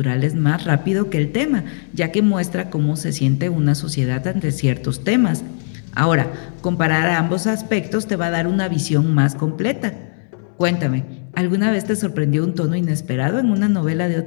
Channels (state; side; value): silent; right; 67 dB below the other